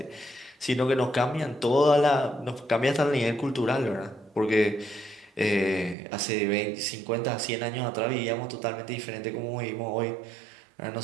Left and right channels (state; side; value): drops out; left; at 6.0 s